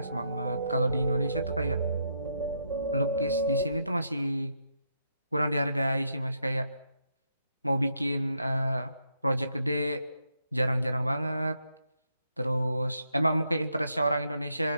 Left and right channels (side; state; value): both; inverted; correlation -0.78